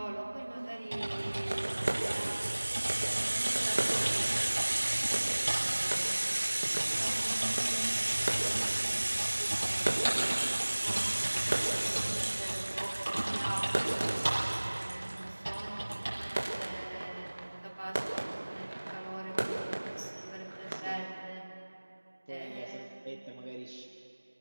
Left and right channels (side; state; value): both; inverted; correlation -1.00